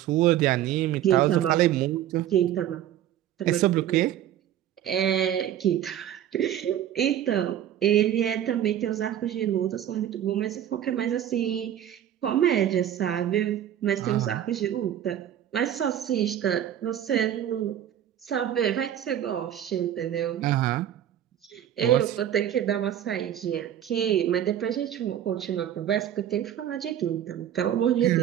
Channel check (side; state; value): left; quieter; 11.0 dB